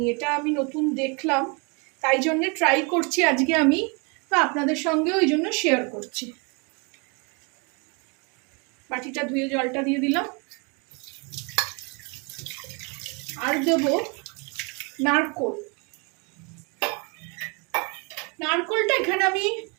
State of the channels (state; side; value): quieter; left; 32.3 dB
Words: এটা আমি নতুন দেখলাম, তাই জন্যে ট্রাই করছি আজকে আমি, বা আপনাদের সঙ্গে ওই জন্য শেয়ার করছি। বাটিটা ধুয়ে জলটা দিয়ে দিলাম। আর দেব নারকোল। নারকোলটা এখানে আমি